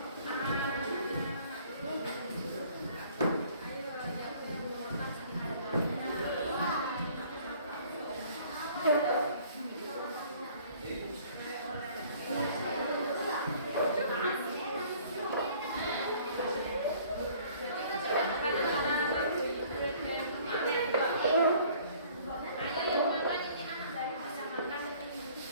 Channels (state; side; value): inverted; both; correlation -0.55